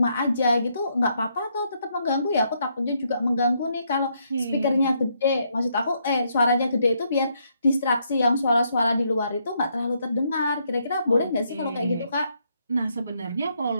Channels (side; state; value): both; inverted; correlation -0.75